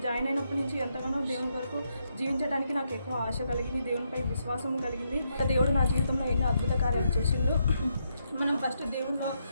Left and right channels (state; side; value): inverted; both; correlation -0.79